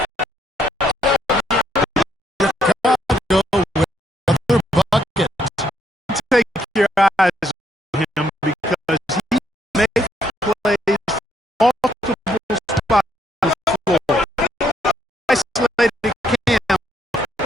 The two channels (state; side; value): normal; both; correlation 0.73